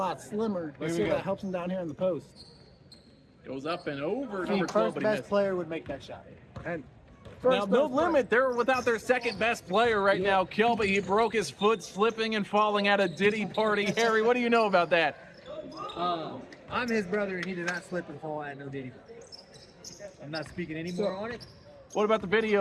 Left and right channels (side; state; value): both; identical; correlation 1.00